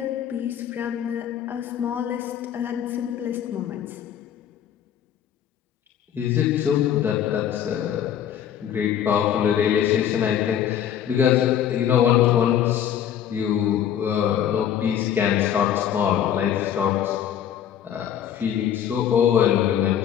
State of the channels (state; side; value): quieter; right; 9.8 dB